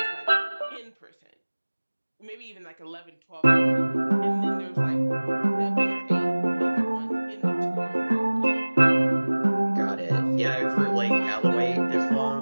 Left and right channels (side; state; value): both; inverted; correlation -1.00